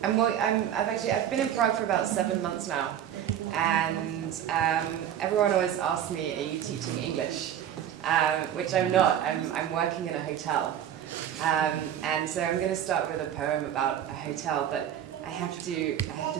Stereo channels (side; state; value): left; quieter; 10.1 dB